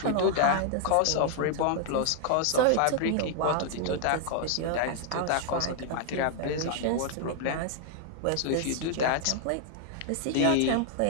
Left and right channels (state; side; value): different; both; correlation 0.00